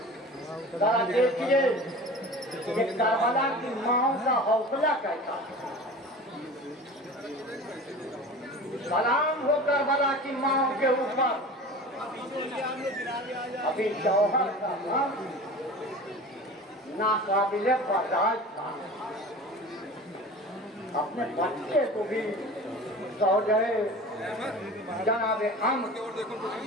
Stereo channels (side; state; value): both; normal; correlation 0.37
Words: ذرا دیکھیے کہ کربلا کی ماؤں کا حوصلہ کیسا. سلام ہو کربلا کی ماؤں کے اوپر. ابھی جوہر کا نام ناقابل برداشت تھا. اپنے بچے کو بھی زوجہ جناب عمر